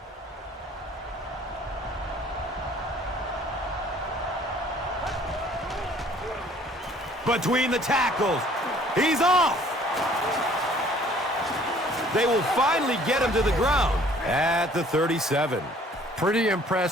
Between the tackles. He's off. They will finally get him to the ground at the 37. Pretty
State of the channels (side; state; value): both; normal; correlation 0.56